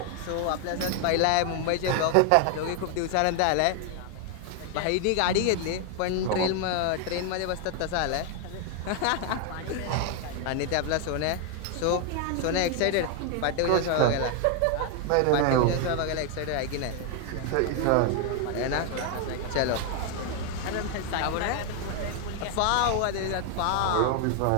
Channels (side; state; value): both; different; correlation 0.01